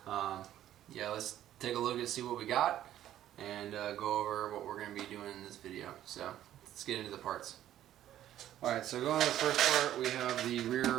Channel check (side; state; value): left; quieter; 12.2 dB